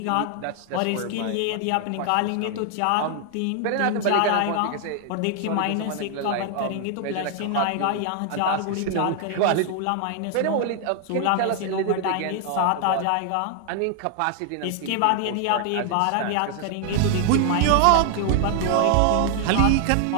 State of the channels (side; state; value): both; different; correlation 0.00